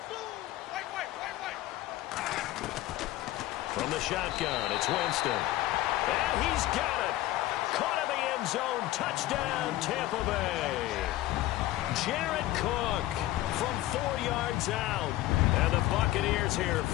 From the shotgun, it's Winston. And he's got it. Caught in the end zone. Touchdown, Tampa Bay. Jared Cook from 4 yards out. And the Buccaneers here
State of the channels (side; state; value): right; quieter; 16.0 dB